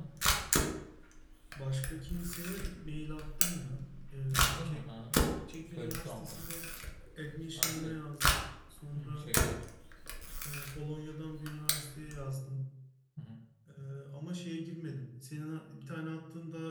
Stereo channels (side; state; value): both; identical; correlation 1.00